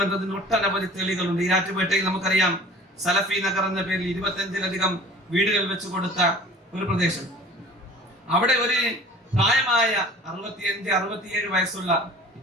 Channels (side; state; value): both; normal; correlation 0.45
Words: ഒട്ടനവധി തെളിവുകളുണ്ട്. ഈരാറ്റുപേട്ടയിൽ നമുക്കറിയാം സലഫി നഗർ എന്ന പേരിൽ 25-ലധികം വീടുകൾ വെച്ച് കൊടുത്ത ഒരു പ്രദേശം. അവിടെ ഒരു പ്രായമായ 65-67 വയസ്സുള്ള,